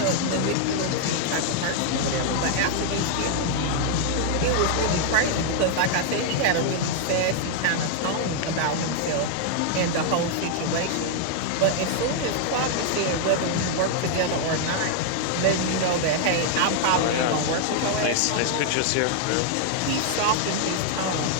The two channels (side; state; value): both; different; correlation 0.00